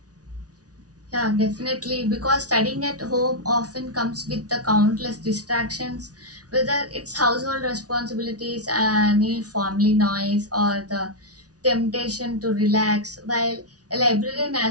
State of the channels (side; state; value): left; late; 0.68 ms